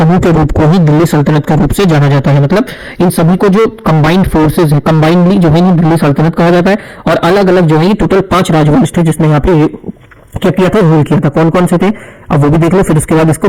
के रूप को ही दिल्ली सल्तनत के रूप से जाना जाता है। मतलब इन सभी को जो कंबाइंड फोर्सेज है, कंबाइंडली जो है दिल्ली सल्तनत कहा जाता है। और अलग अलग जो है टोटल 5 राजवंश थे जिसने यहाँ पे क्या किया था, रूल किया था। कौन कौन से थे अब वो भी देख लो, फिर उसके बाद इसको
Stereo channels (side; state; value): both; identical; correlation 1.00